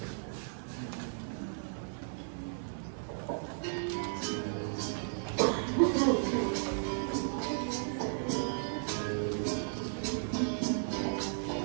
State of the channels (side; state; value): left; silent; 55 dB below the other